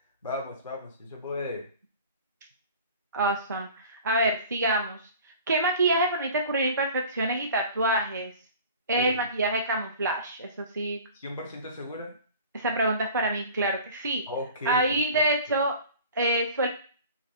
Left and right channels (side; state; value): both; inverted; correlation -0.42